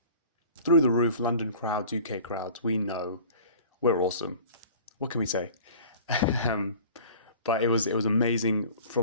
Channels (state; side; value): inverted; both; correlation -0.45